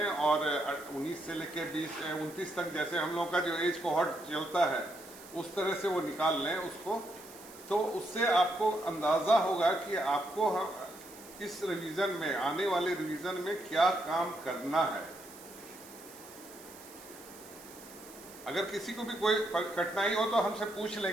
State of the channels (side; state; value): right; noise; hiss, 18 dB below the sound